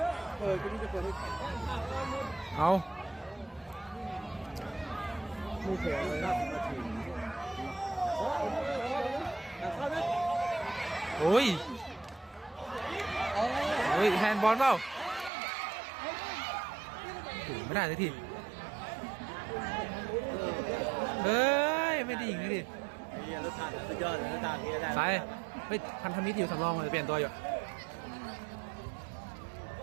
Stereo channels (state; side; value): drops out; left; at 15.3 s